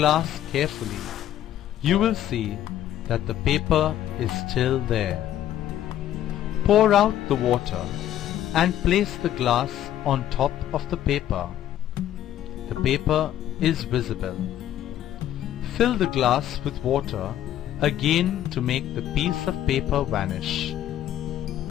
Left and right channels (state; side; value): quieter; right; 11.9 dB